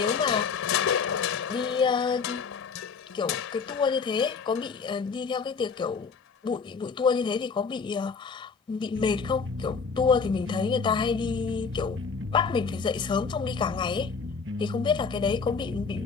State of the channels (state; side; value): quieter; right; 5.4 dB